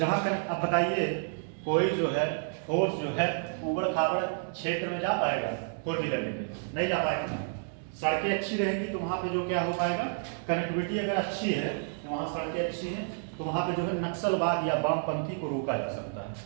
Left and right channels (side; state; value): left; silent; digital silence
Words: अब बताइए, कोई जो है फोर्स जो है उबड़ खाबड़ क्षेत्र में जा पाएगा? 4 व्हीलर लेके नहीं जा पाएगा। सड़कें अच्छी रहेंगी तो वहां पे जो क्या हो पाएगा? कनेक्टिविटी अगर अच्छी है तो वहां सड़कें अच्छी हैं तो वहां पे जो है नक्सलवाद या वामपंथी को रोका जा सकता है,